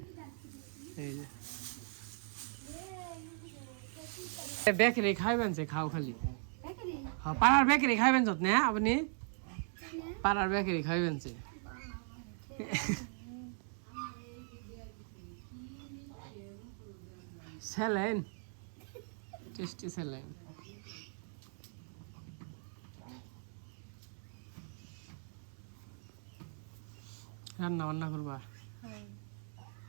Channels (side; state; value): left; silent; 52 dB below the other